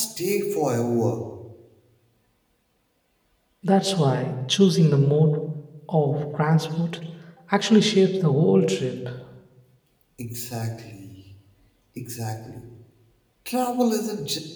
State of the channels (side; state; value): both; identical; correlation 1.00